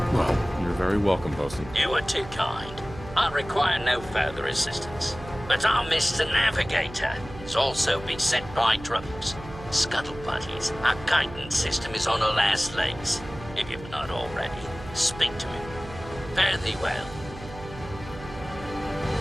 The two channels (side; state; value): right; noise; hum, 14 dB below the sound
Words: well, you're very welcome, Bosun. You are too kind. I require no further assistance. But our Mr. Navigator is also beset by troubles. Scuttle buddies, our guidance system is on her last legs. If you've not already, speak to him. Fare thee well.